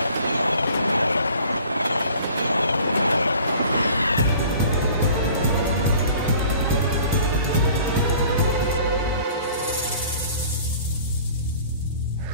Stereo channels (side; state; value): both; inverted; correlation -0.49